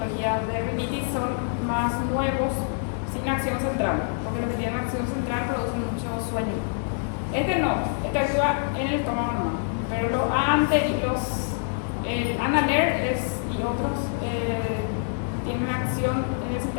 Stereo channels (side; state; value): right; silent; 60 dB below the other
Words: de rinitis, son más nuevos, sin acción central, porque los que tienen acción central producen mucho sueño. Este no, este actúa en el estómago nomás, pero el Analer y otros tienen acción en el